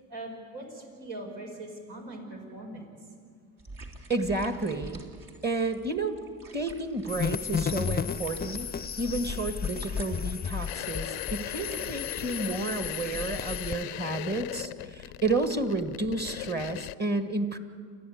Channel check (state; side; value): normal; both; correlation 0.38